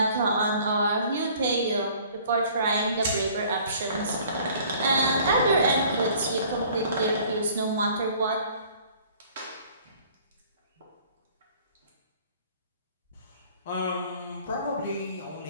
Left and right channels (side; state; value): both; inverted; correlation -0.54